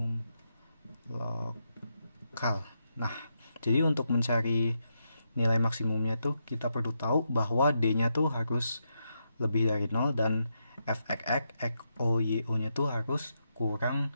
Nah, jadi untuk mencari nilai maksimumnya tuh kita perlu tahu bahwa D-nya tuh harus lebih dari 0 dan fxx XO YO nya tuh harus kurang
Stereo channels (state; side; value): inverted; both; correlation -0.83